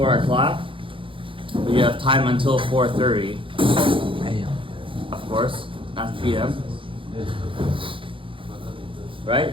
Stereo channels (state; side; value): late; left; 0.25 ms